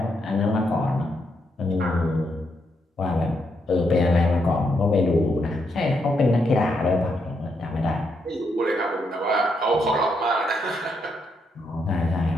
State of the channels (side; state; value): both; normal; correlation 0.78